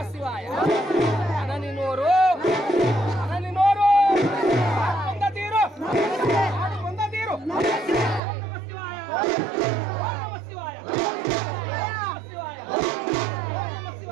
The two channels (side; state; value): left; drops out; at 8.2 s